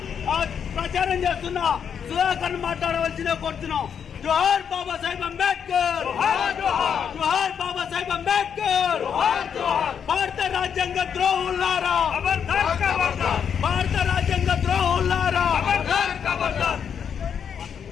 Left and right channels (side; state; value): right; quieter; 7.6 dB